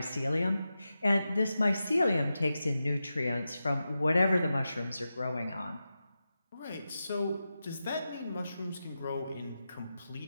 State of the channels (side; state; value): both; inverted; correlation -0.91